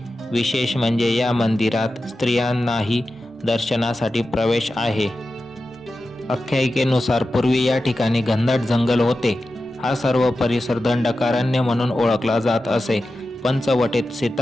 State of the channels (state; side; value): normal; both; correlation 0.92